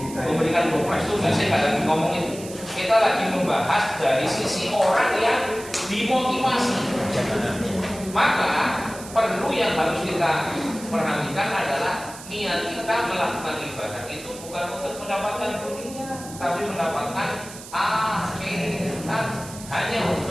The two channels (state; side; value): noise; right; hiss, 15 dB below the sound